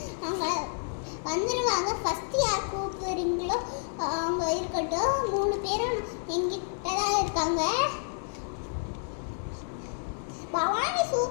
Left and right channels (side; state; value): right; silent; 58 dB below the other